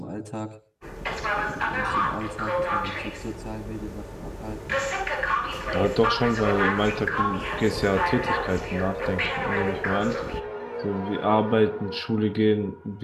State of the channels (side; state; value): both; identical; correlation 1.00